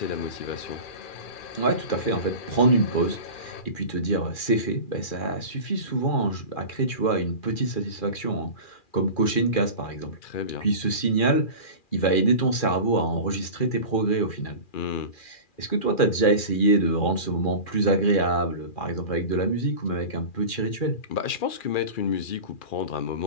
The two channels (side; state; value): right; late; 2.4 ms